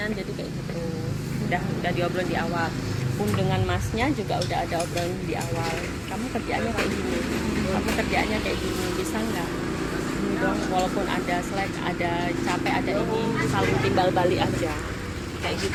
jadi kayak gitu. Udah diobrolin di awal. Pun dengan masnya juga udah ada obrolan di awal. Kamu kerjaannya kayak gini, kamu kerjaannya kayak gini, bisa nggak? Dong, walaupun ada slack, ada capek, ada ini, saling timbal balik aja, kayak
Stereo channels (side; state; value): both; identical; correlation 1.00